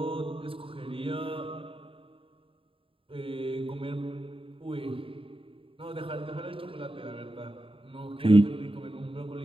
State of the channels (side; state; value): left; late; 0.26 ms